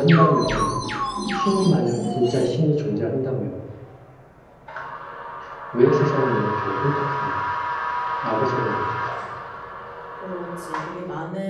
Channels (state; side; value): identical; both; correlation 1.00